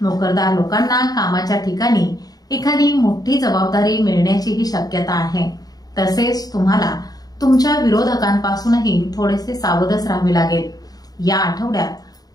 नोकरदार लोकांना कामाच्या ठिकाणी एखादी मोठी जबाबदारी मिळण्याचीही शक्यता आहे. तसेच तुम्हाला तुमच्या विरोधकांपासूनही थोडेसे सावधच राहावे लागेल. या आठवड्यात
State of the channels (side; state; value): right; late; 0.18 ms